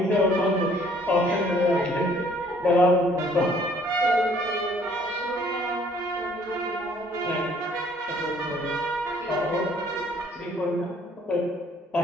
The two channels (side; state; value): both; normal; correlation 0.60